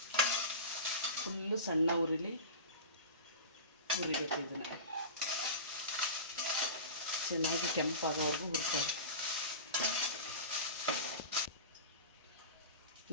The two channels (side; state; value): both; inverted; correlation -0.31